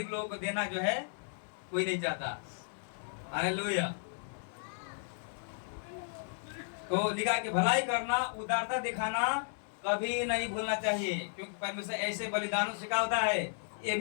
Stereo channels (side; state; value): right; silent; digital silence